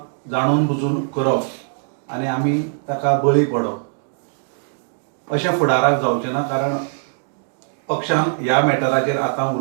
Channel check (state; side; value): silent; left; 65 dB below the other